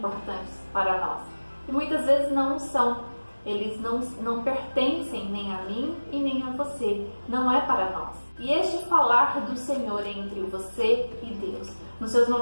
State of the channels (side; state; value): both; inverted; correlation -1.00